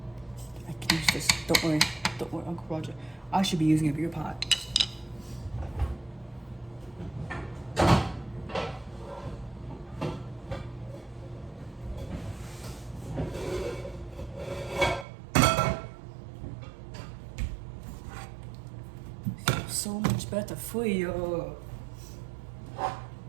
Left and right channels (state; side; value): drops out; left; at 15.1 s